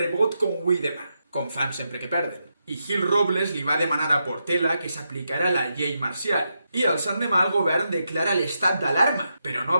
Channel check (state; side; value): inverted; both; correlation -0.84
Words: com avui demà, com fan sempre que perden. I Gil Robles li va demanar a Portela que s'aplicara la llei marcial. I el l'endemà el govern declara l'estat d'alarma, però no